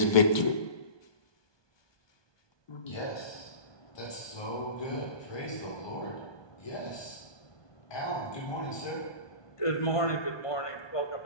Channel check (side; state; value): right; late; 1.2 ms